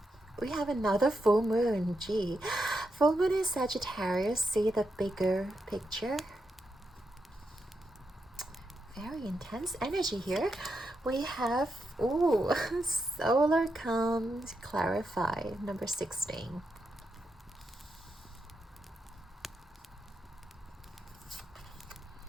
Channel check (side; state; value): both; normal; correlation 0.84